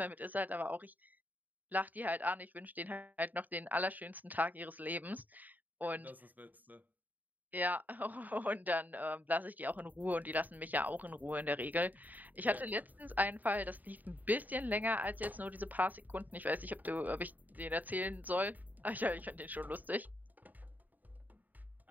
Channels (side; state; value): left; late; 0.083 ms